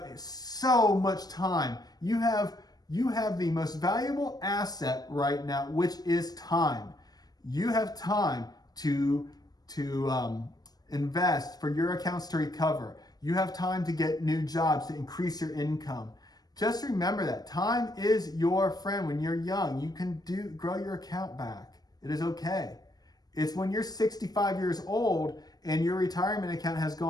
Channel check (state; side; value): late; right; 0.19 ms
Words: so much time. You have the most valuable asset right now, which is time. You have time to invest for your accounts to recover. You have time to get new jobs, to increase your income. Just remember that time is your friend. When you're young, you can grow your account back. It is okay. It's when you're 65 years old and your retirement account has